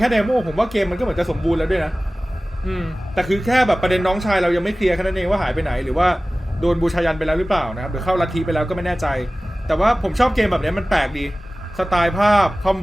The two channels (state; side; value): normal; both; correlation 0.97